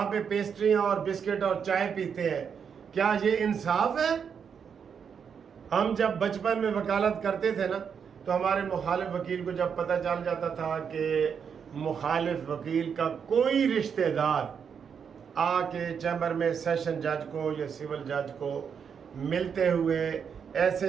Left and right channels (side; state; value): left; quieter; 7.0 dB